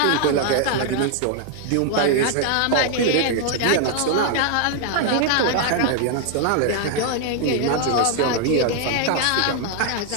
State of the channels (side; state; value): both; different; correlation 0.00